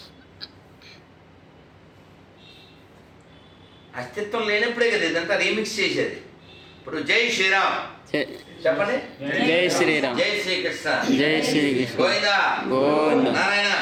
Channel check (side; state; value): both; identical; correlation 1.00